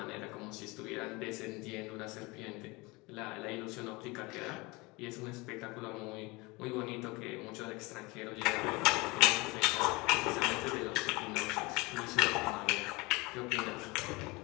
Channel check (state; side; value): quieter; right; 24.6 dB